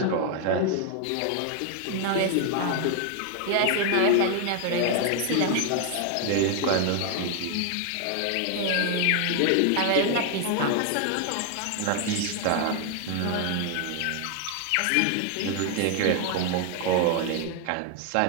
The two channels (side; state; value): both; different; correlation 0.00